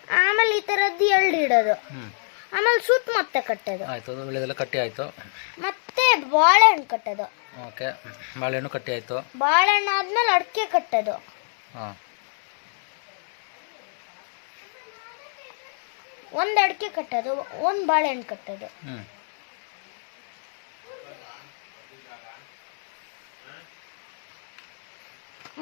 ಆಮೇಲೆ ಈ ತರದ್ದು 2 ಇಡೋದು. ಆಮೇಲೆ ಸುತ್ತ ಮತ್ತೆ ಕಟ್ಟೋದು. ಆಯ್ತು, ವಿಳೆದೆಲ್ಲ ಕಟ್ಟಿ ಆಯ್ತು. ಮತ್ತೆ ಬಾಳೆಹಣ್ಣು ಕಟ್ಟೋದು. ಓಕೆ, ಬಾಳೆಹಣ್ಣು ಕಟ್ಟಿ ಆಯ್ತು. ಬಾಳೆಹಣ್ಣು ಆದ್ಮೇಲೆ ಅಡಿಕೆ ಕಟ್ಟೋದು. ಒಂದು ಅಡಿಕೆ ಕಟ್ಟೋದು, ಒಂದು ಬಾಳೆಹಣ್ಣು ಕಟ್ಟೋದು.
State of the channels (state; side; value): silent; right; 61 dB below the other